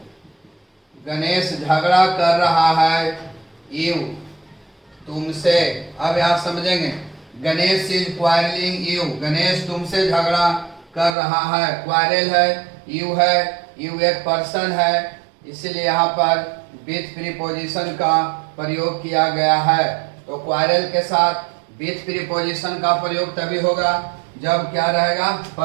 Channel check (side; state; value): left; drops out; at 11.2 s